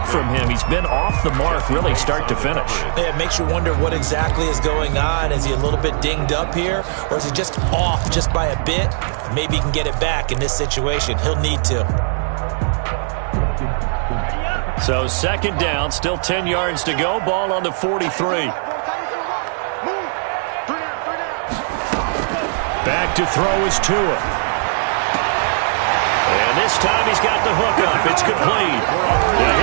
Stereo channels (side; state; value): left; silent; digital silence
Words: from him. He's been off the mark really start to finish. Yeah, it makes you wonder what exactly is going on. Is he a little bit dinged up here, or is he just off just by a bit? Maybe he can get it back in this situation. He'll need to. So 2nd down, still 10 yards to go. Ball on the 43. Back to throw is Tua. And this time he's got the hook up. It's complete. And